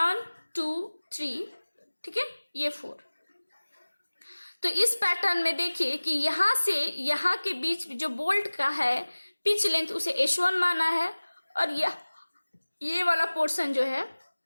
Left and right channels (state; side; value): inverted; both; correlation -1.00